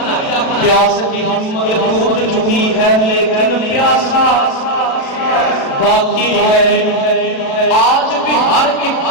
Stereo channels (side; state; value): right; late; 36 ms